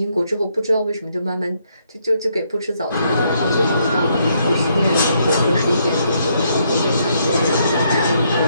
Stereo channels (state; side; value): inverted; both; correlation -0.73